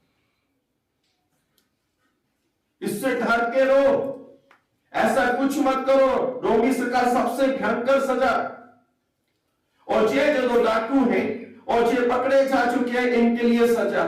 इससे डर के रहो, ऐसा कुछ मत करो, रोमी सरकार सबसे भयंकर सजा। और ये जो दो डाकू हैं और ये पकड़े जा चुके हैं, इनके लिए सजा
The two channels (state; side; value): identical; both; correlation 1.00